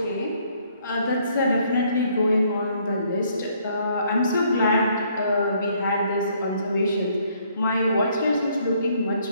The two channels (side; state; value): both; inverted; correlation -0.66